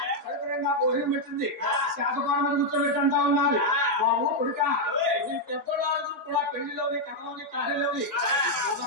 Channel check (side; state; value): both; normal; correlation 0.00